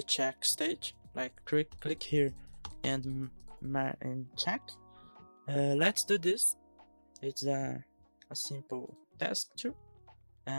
check stage. Like click here and check. Let's do this. It's a simple task too.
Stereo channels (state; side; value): inverted; both; correlation -1.00